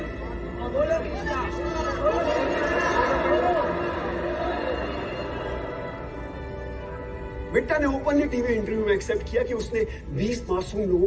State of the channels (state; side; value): identical; both; correlation 1.00